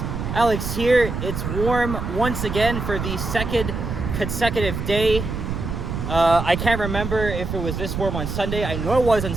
Alex here. It's warm once again for the second consecutive day. I can't remember if it was this warm on Sunday. I know it was on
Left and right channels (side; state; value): right; noise; rumble, 4 dB below the sound